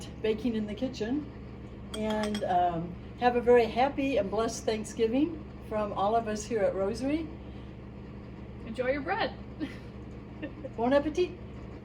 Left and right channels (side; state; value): both; identical; correlation 1.00